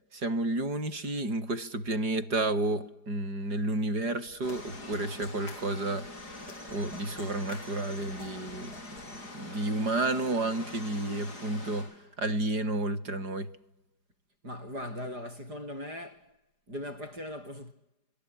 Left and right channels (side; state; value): left; late; 4.9 ms